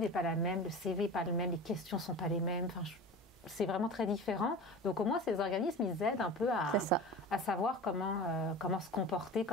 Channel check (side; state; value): both; normal; correlation 0.33